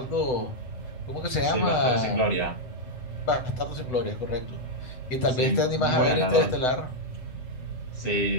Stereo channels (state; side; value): late; right; 8.0 ms